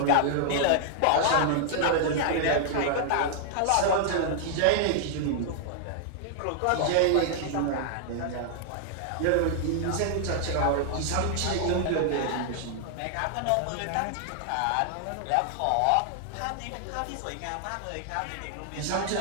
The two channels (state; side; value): different; both; correlation -0.01